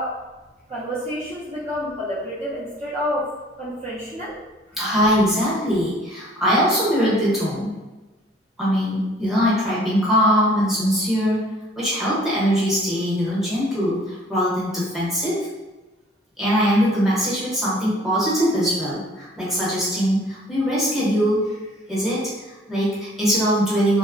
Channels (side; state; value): both; normal; correlation 0.54